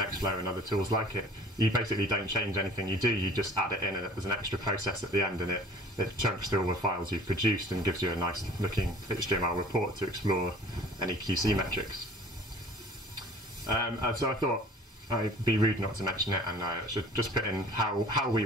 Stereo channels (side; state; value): both; normal; correlation 0.48